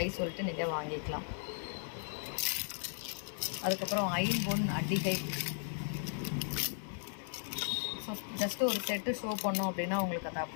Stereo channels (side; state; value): right; silent; digital silence